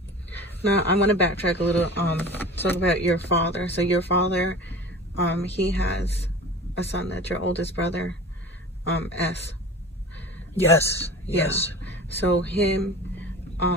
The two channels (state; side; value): normal; both; correlation 0.37